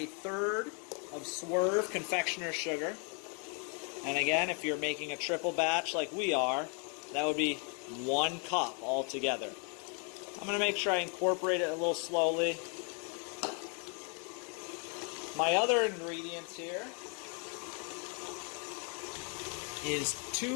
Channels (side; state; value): right; quieter; 38.3 dB